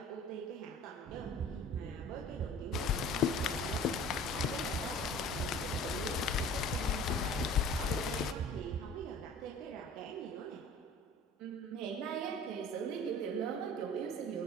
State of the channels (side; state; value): both; normal; correlation 0.45